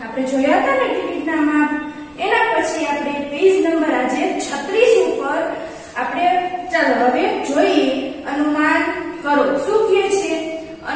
આપણે જોયા હતા ને। ટિકિટના માપ એના પછી આપણે પેજ નંબર આજે 36 ઉપર આપણે ચાલો હવે જોઈએ અનુમાન કરો। શું કહે છે?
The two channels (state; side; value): identical; both; correlation 1.00